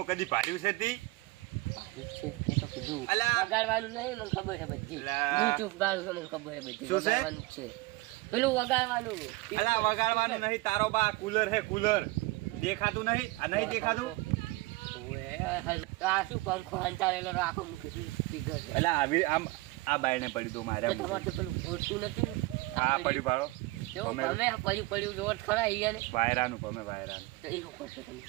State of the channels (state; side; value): quieter; left; 21.3 dB